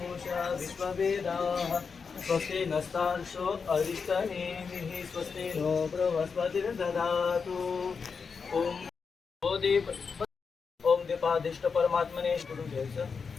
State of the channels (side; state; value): right; quieter; 5.5 dB